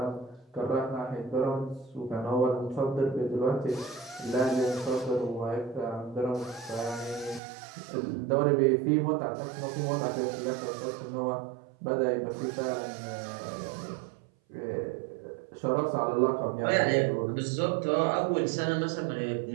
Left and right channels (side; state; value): left; drops out; at 7.4 s